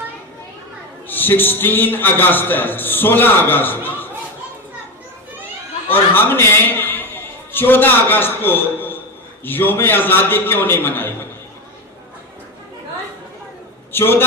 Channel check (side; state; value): both; normal; correlation 0.18